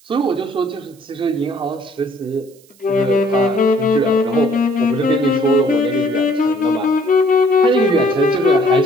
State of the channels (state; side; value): noise; right; hiss, 29 dB below the sound